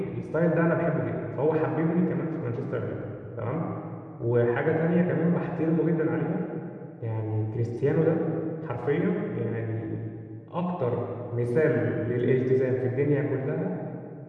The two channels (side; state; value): both; identical; correlation 1.00